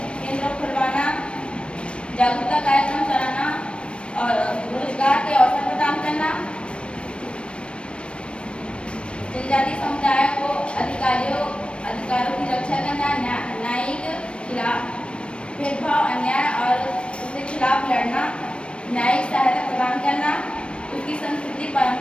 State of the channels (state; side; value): late; right; 0.058 ms